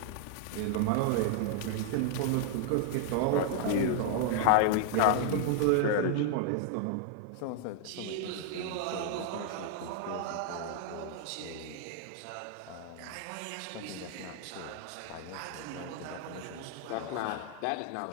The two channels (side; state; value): both; different; correlation 0.00